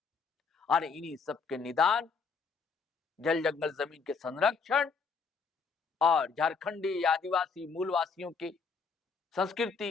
और इन्हीं सबके निदान जल, जंगल, जमीन के संरक्षण और झारखंडी आदिवासी मूलवासियों की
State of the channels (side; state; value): right; quieter; 5.2 dB